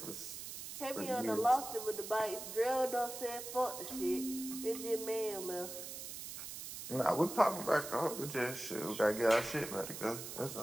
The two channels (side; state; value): right; noise; hiss, 8 dB below the sound